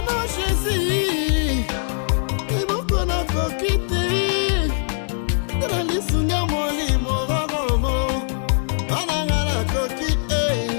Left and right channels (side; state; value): right; silent; digital silence